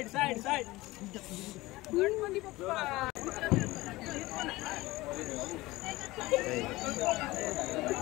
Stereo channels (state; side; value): quieter; right; 19.7 dB